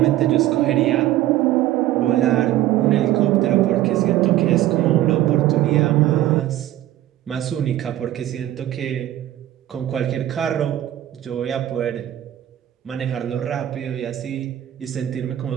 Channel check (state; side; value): quieter; left; 13.6 dB